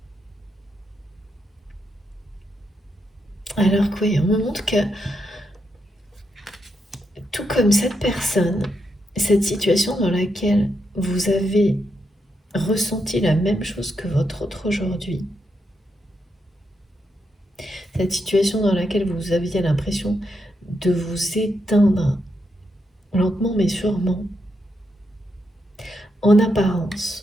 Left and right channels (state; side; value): normal; both; correlation 0.82